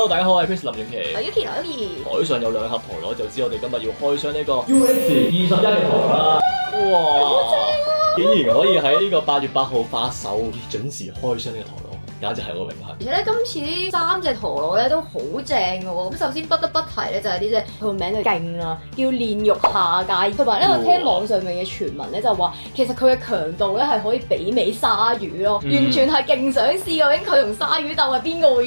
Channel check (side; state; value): both; inverted; correlation -1.00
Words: 大家好，我係 Chris 林永琪。我 Yuki。台上有兩盒陀螺，就知我哋今日要開箱呢個 UX21嘅陀螺啦。哇！竟然可以喺呢個8月8號發售，準時開箱呢個陀螺，簡直係我榮幸。而且咧，今次呢3隻陀螺咧都好正嘅喎。咁首先不得不提咧就係呢隻佢個名就勁啦，叫煉獄下界。同埋咧，我聽網上面嘅傳聞咧就話，其實佢嘅強度咧係可以媲美鯊魚咯，完全係勁想試究竟佢同鯊魚鬥係邊個會